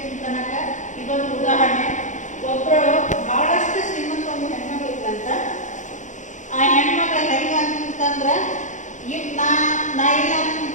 ಅಂತನಕ ಇದೊಂದು ಉದಾಹರಣೆ. ಒಬ್ಬರು ಬಹಳಷ್ಟು ಶ್ರೀಮಂತ ಒಂದು ಹೆಣ್ಮಗಳು ಇದ್ದಂತ. ಆ ಹೆಣ್ಮಕ್ಳ ಹೆಂಗ ಅಂತಂದ್ರೆ ಈಗ ನಾ ಇಲ್ಲ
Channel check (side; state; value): right; late; 0.36 ms